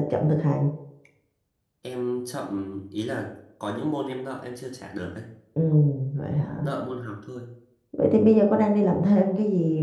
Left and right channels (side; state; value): both; identical; correlation 1.00